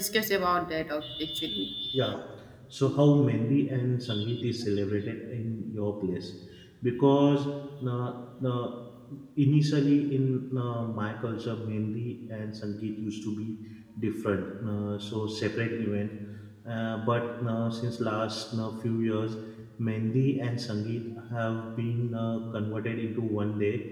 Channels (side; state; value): both; identical; correlation 1.00